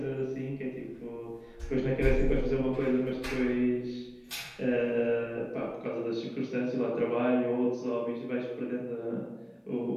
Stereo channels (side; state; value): both; identical; correlation 1.00